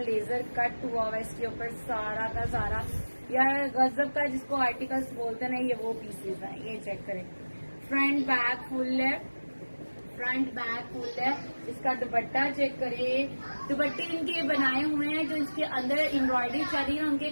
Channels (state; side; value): inverted; both; correlation -1.00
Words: लेजर कट हुआ हुआ इसके ऊपर सारा का सारा। यार गजब का जिसको आर्टिकल्स बोलते हैं ना, ये वो पीसेस हैं। ये चेक करें, फ्रंट बैक फुल है। इसका दुपट्टा चेक करें, दुपट्टे इनके बनाए हुए हैं जो इसके अंदर एम्ब्रॉयडरी चल रही है उनके